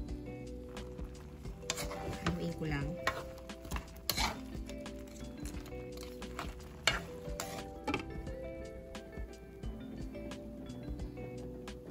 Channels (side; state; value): both; identical; correlation 1.00